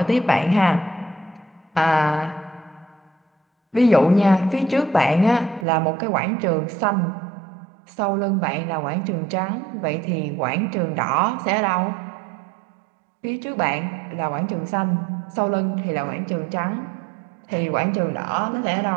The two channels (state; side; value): drops out; left; at 5.7 s